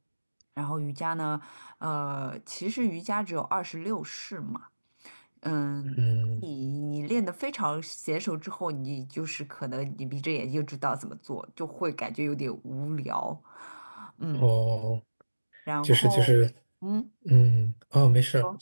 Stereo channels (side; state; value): both; inverted; correlation -1.00